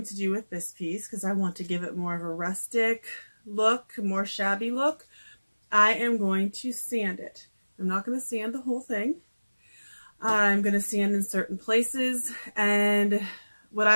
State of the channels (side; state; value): both; inverted; correlation -1.00